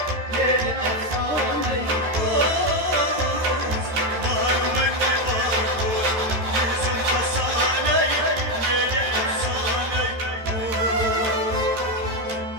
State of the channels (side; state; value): left; late; 13 ms